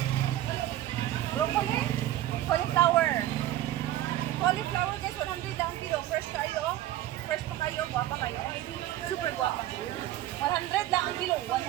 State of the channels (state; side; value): quieter; left; 13.9 dB